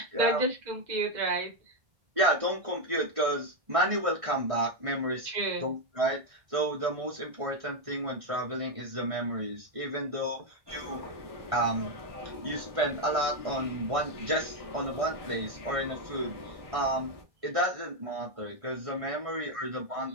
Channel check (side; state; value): left; late; 1.6 ms